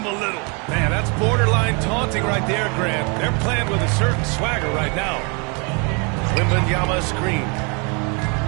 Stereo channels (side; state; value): left; quieter; 32.8 dB